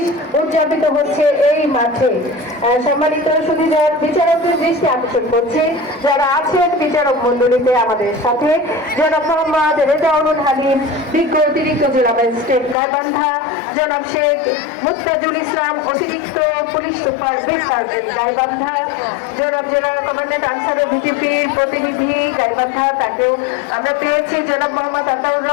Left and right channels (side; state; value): right; drops out; at 12.8 s